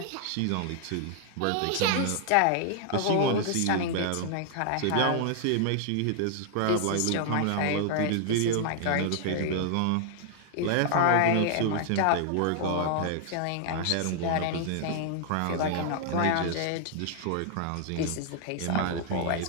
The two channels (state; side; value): different; both; correlation 0.00